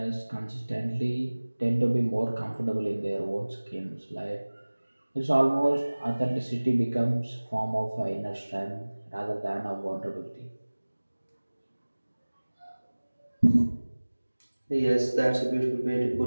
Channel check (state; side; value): inverted; both; correlation -1.00